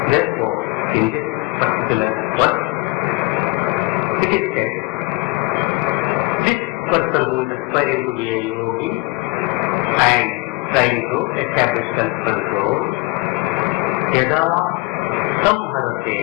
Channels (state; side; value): quieter; right; 24.1 dB